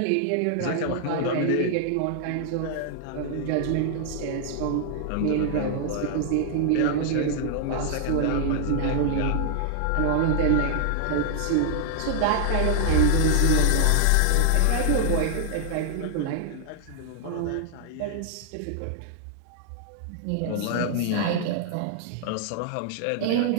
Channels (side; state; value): both; different; correlation 0.00